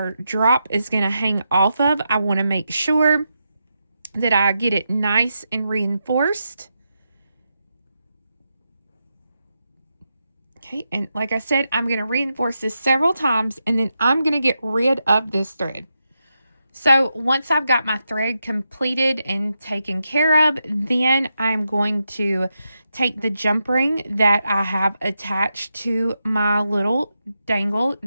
drop is going to hang off of, I want to make sure that I get it nice and reinforced. Okay, and like I said, I'm going to reinforce this several times, and then I'm going to get rid of this thread. So once I've got my thread completed and taken care of, then I'm going to take the jump ring that I have attached to my little dangle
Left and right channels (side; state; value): both; inverted; correlation -0.86